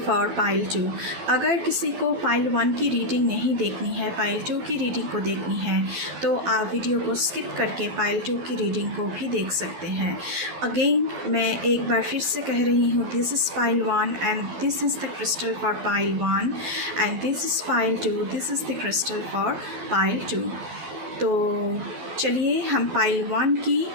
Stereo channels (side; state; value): left; late; 12 ms